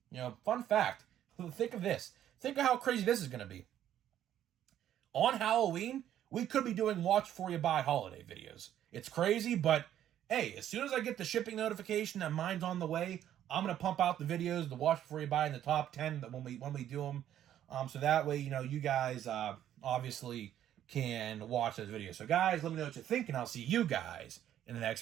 fun fact, think of this. Think of how crazy this is going to be. On Halloween, we could be doing watch before you buy holiday videos. It's crazy, but hey, as soon as I get the shipping notification that mine's on the way, I'm going to pump out the videos, the watch before you buy in the top 10 when we do them. So that way, you guys obviously can watch those videos. So guys, let me know what you think, and I'll see you guys in the next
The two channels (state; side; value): quieter; left; 11.2 dB